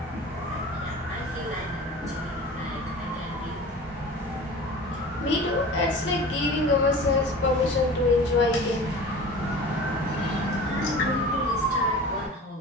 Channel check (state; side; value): normal; both; correlation 0.38